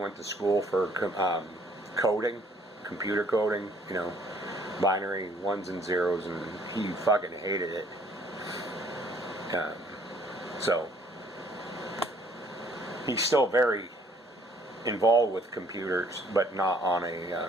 to school for coding, computer coding, binary ones and zeros, and he fucking hated it. So he's still very involved with computers, but not on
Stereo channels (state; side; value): normal; both; correlation 0.61